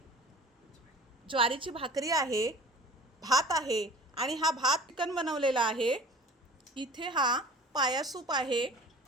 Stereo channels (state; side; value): normal; both; correlation 0.43